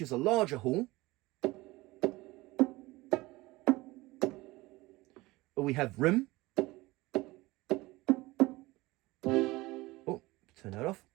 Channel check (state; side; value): quieter; left; 20.6 dB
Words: is a larger hall. Or we have room. Oh, turn that off.